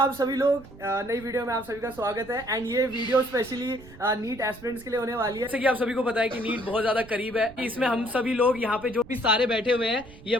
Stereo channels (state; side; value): noise; right; rumble, 20 dB below the sound